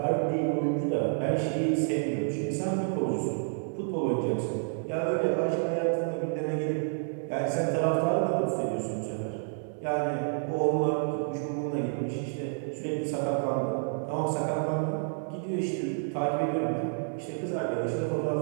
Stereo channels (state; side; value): silent; left; 56 dB below the other